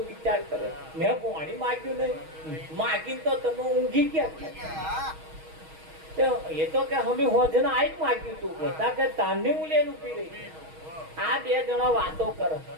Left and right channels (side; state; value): left; late; 6.3 ms